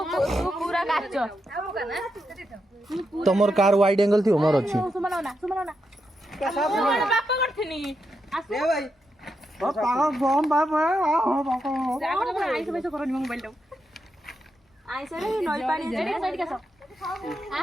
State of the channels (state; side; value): normal; both; correlation 0.84